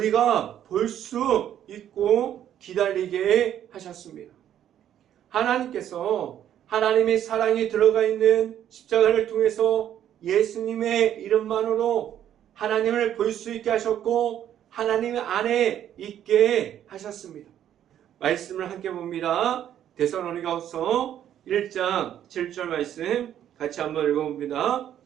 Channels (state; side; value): quieter; left; 10.6 dB